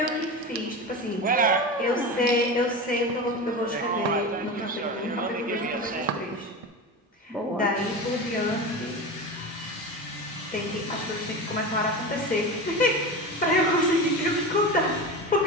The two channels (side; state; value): both; normal; correlation 0.26